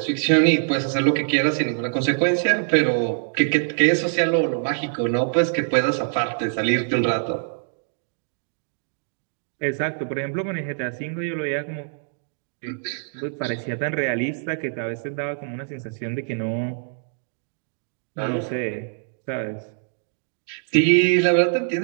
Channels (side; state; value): left; silent; digital silence